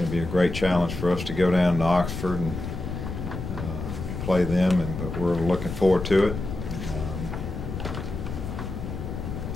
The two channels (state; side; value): noise; left; rumble, 6 dB below the sound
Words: to be a great challenge for us to go down to Oxford and play them, but we're looking forward to it.